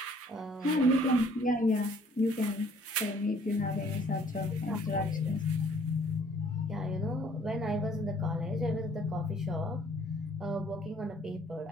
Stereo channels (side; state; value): both; normal; correlation 0.59